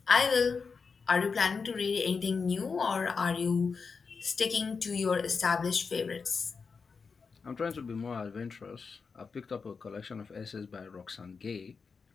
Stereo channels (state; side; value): quieter; right; 5.1 dB